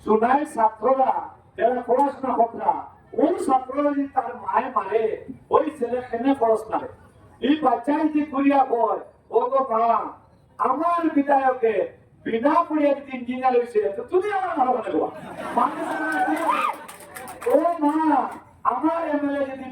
শোনায় ছাত্ররা যারা পড়াশোনা করতে ওই ছাত্ররা যদি তার মায়ে মারে ওই ছেলে কেনে পড়াশোনা এই বাচ্চাই যে করিয়া হয় ও গো মা আমার বিধায়কে বিনা পড়িয়া যদি ইঞ্জিনিয়ার হয়েছে তো তুমি আমার ভালো লাগবা ও মা আমার এমএলএ যদি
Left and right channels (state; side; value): identical; both; correlation 1.00